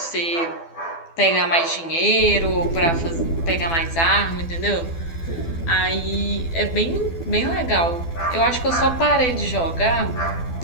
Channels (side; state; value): right; late; 12 ms